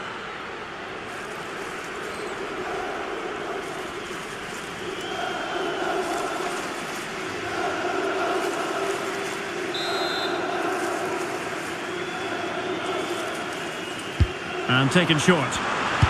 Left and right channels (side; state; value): both; identical; correlation 1.00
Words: And taken short.